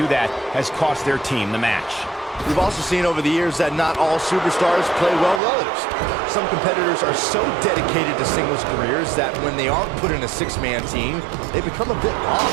that has cost their team the match. We've also seen over the years that not all superstars play well with others. Some competitors are so dedicated to singles careers that when they aren't put in a six-man team, they become a bit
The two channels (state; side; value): drops out; left; at 5.4 s